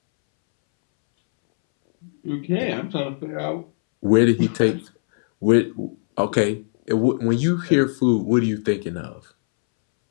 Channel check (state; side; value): silent; right; 65 dB below the other